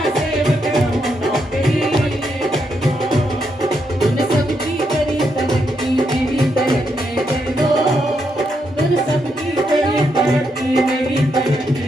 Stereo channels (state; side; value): normal; both; correlation 0.80